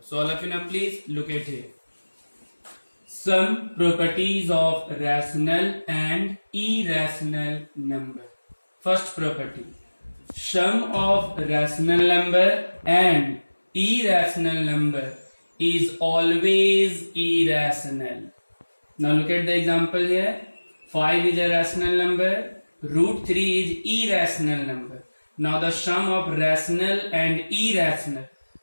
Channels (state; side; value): inverted; both; correlation -1.00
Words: all of you now please look at here. Some properties of rational and irrational number. First property. Sum of rational number and irrational number is always irrational. Now look at the example here. 5 is a rational number. Root 3 is irrational number. Now the sum of rational and irrational